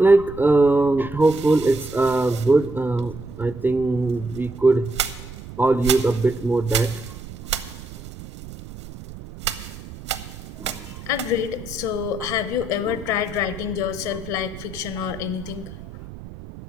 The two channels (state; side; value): noise; right; rumble, 14 dB below the sound